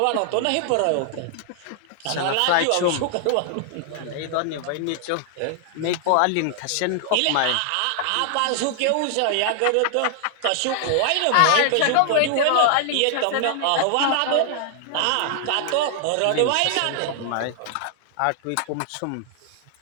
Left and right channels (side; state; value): both; different; correlation 0.00